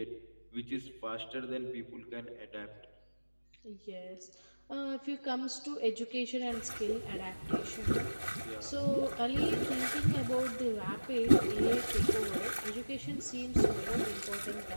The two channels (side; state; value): both; inverted; correlation -1.00